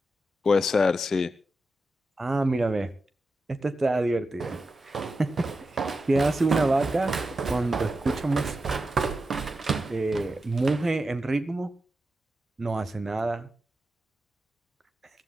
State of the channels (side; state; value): both; normal; correlation 0.90